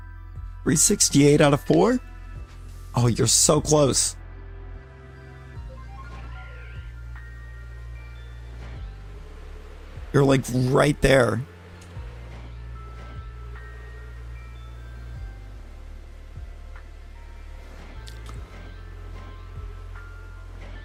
$368 out of 4? Oh, you're so close. You're like right there.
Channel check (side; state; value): both; identical; correlation 1.00